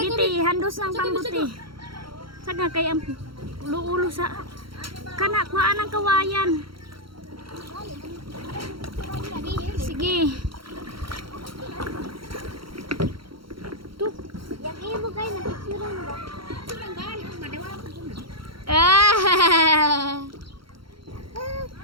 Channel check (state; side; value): late; left; 0.74 ms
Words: ti, handos ng pambuti. Saga kay ang ulo sa kana kuhaan ang kawayan. Sige. Tu. Yang iyo mo kayo, napicturan mo ba?